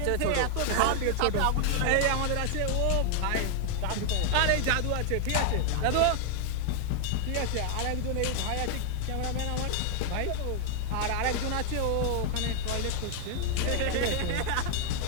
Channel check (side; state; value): both; different; correlation 0.00